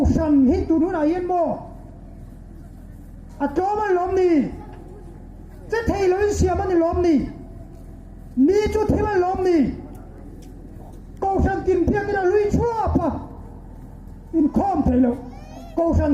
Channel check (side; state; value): both; identical; correlation 1.00